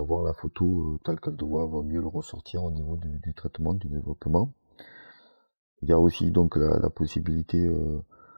la photo telle qu'elle doit mieux le ressortir au niveau du traitement, du développement. Il y a aussi donc la possibilité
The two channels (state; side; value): inverted; both; correlation -1.00